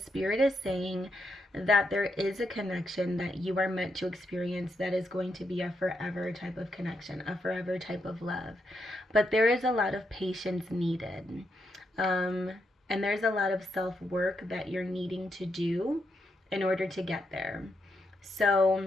Spirit is saying that there is a connection that you are meant to experience that is going to be a forever type of connection, a forever type of love. But there is a lot of patience needed. And there's a lot of self-work that you're needing to do in order to get there.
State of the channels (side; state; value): both; normal; correlation 0.81